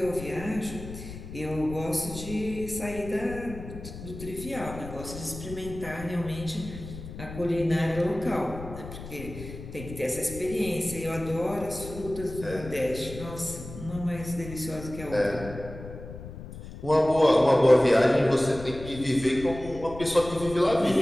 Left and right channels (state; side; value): noise; left; rumble, 12 dB below the sound